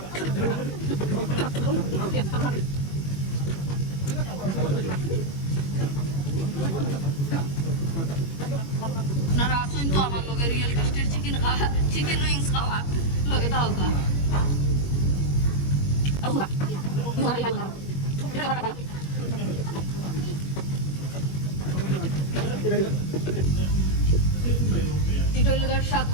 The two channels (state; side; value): late; right; 21 ms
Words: আপনারা আসুন তো আমার লগে রিয়েল টেস্টের চিকেন উইংস খাওয়া লগে দাও কা। এটা হইল স্বাদ